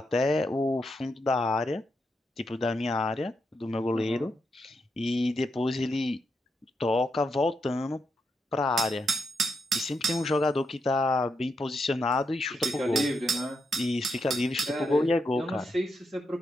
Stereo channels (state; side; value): normal; both; correlation 0.83